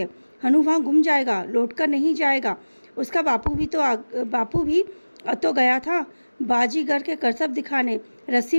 हनु वहाँ गुम जाएगा, लौटकर नहीं जाएगा। उसका बापू भी तो गया था बाजीगर के करतब दिखाने, रस्सी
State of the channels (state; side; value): inverted; both; correlation -1.00